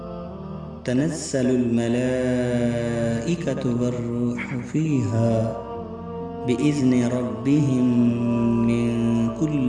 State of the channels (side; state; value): both; identical; correlation 1.00